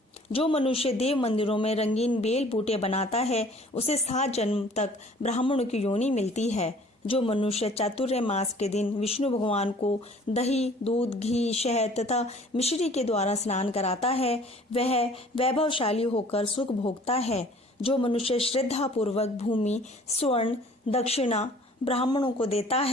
जो मनुष्य देव मंदिरों में रंगीन बेल बूटे बनाता है, उसे 7 जन्म तक ब्राह्मणों की योनि मिलती है। जो मनुष्य चातुर्य मास के दिन विष्णु भगवान को दही, दूध, घी, शहद तथा मिश्री के द्वारा स्नान कराता है, वह वैभवशाली होकर सुख भोगता है। जो मनुष्य श्रद्धा पूर्वक भूमि, स्वर्ण, दक्षिणा ब्राह्मणों को देता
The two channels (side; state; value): both; normal; correlation 0.52